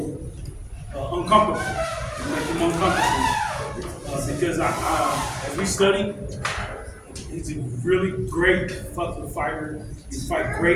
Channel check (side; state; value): both; identical; correlation 1.00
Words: uncomfortable, make him uncomfortable. Because as we study, he's a really great fucking fighter. He fight